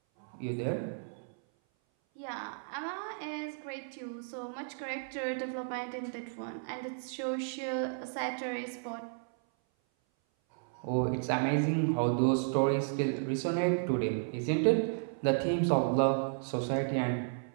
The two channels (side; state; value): left; silent; 56 dB below the other